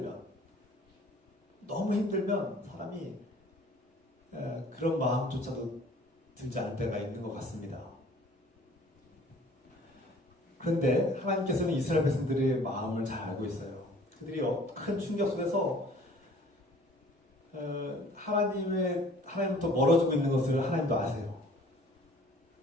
힘들면 사람이 그런 마음조차도 들지 않을 때가 있는 것 같습니다. 그런데 하나님께서는 이스라엘 백성들의 마음을 잘 알고 있어요. 그들이 큰 충격 속에서 하나님부터 멀어지고 있는 것을 하나님도 아세요.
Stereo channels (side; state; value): both; normal; correlation 0.52